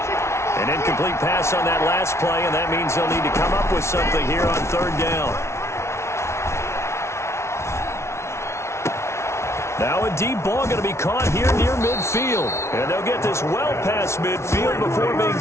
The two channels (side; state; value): right; late; 0.13 ms